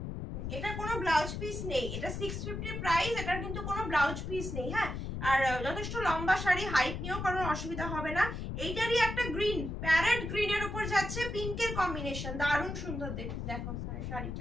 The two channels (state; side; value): noise; left; rumble, 5 dB below the sound